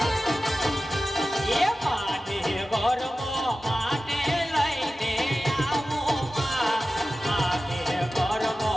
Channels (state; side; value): normal; both; correlation 0.95